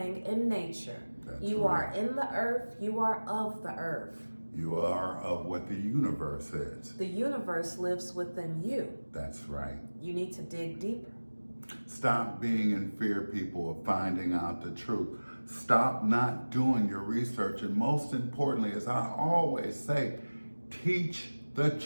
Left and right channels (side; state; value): both; inverted; correlation -1.00